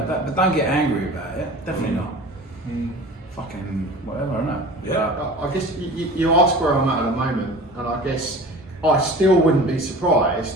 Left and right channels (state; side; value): normal; both; correlation 0.39